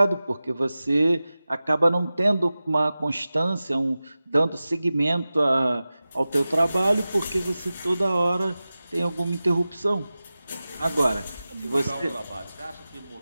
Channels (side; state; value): both; inverted; correlation -0.96